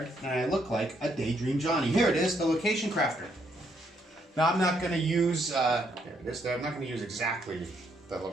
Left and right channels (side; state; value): both; normal; correlation 0.73